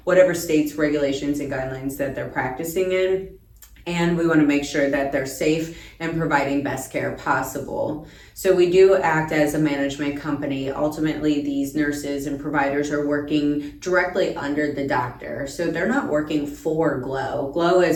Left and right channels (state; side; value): identical; both; correlation 1.00